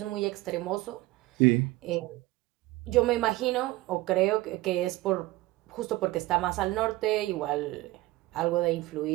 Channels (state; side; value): quieter; left; 18.9 dB